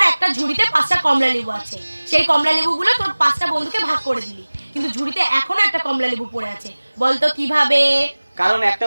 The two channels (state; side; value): inverted; both; correlation -1.00